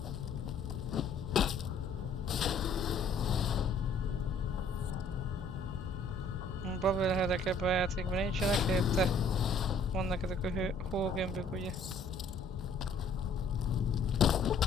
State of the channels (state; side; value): quieter; right; 3.3 dB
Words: bubbleheadek ebben a játékban nincsenek, helyette vannak ezek a hógömbök, ugye.